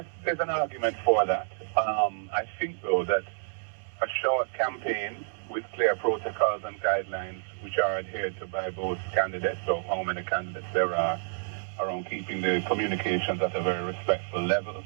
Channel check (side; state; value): left; silent; digital silence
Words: there's an argument for that. I think, though, that a short campaign with clear protocols and guidelines which are adhered to by both candidates, or how many candidates there are, around keeping the communications at a very respectful level,